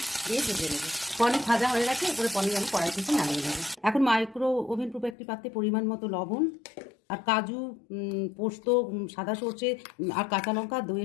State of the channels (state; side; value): drops out; right; at 5.2 s